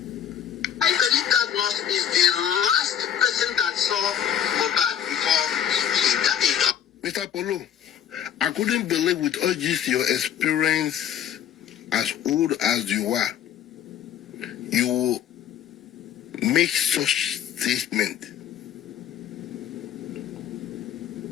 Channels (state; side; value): quieter; right; 9.7 dB